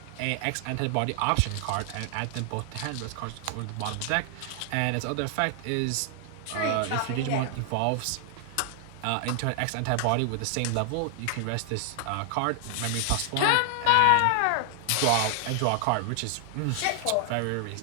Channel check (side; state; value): both; different; correlation 0.00